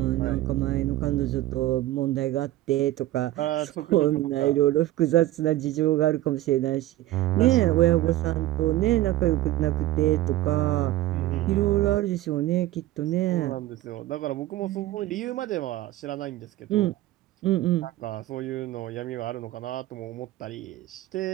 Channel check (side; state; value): left; quieter; 15.5 dB